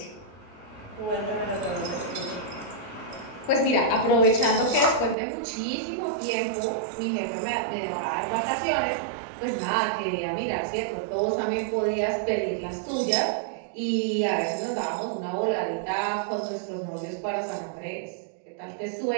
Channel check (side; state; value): left; drops out; at 5.2 s